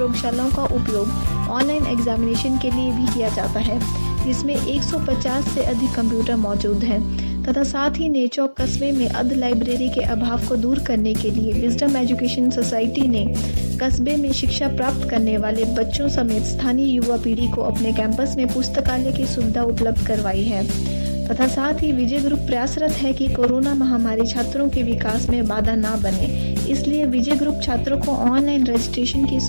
का उपयोग ऑनलाइन एग्जामिनेशन के लिए भी किया जाता है, जिसमें 150 से अधिक कंप्यूटर मौजूद हैं तथा साथ ही नेचौक कस्बे में अर्ध लाइब्रेरी के अभाव को दूर करने के लिए विजडम एजुकेशन सोसाइटी ने कस्बे में शिक्षा प्राप्त करने वाले बच्चों समेत स्थानीय युवा पीढ़ी को अपने कैंपस में पुस्तकालय की सुविधा उपलब्ध करवाई है तथा साथ ही विजय ग्रुप प्रयासरत है कि कोरोना महामारी छात्रों के विकास में बाधा न बने, इसलिए विजय ग्रुप छात्रों को ऑनलाइन रजिस्ट्रेशन की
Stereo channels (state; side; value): inverted; both; correlation -1.00